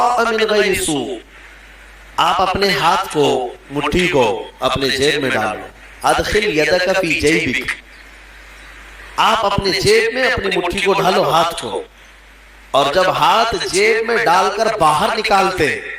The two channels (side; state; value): both; identical; correlation 1.00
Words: مِنْ غَيْرِ سُوءٍ۔ آپ اپنے ہاتھ کو، مٹھی کو اپنے جیب میں ڈالو، ادخل یدک فی جیبک، آپ اپنے جیب میں اپنی مٹھی کو ڈالو، ہاتھ کو، اور جب ہاتھ جیب میں ڈال کر باہر نکالتے